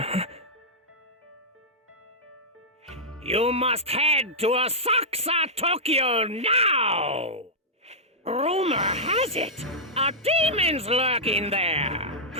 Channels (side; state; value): both; normal; correlation -0.11